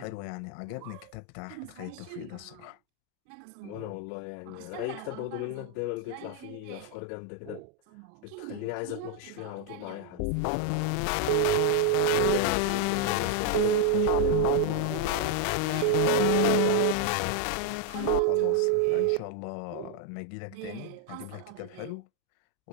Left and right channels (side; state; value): both; different; correlation 0.01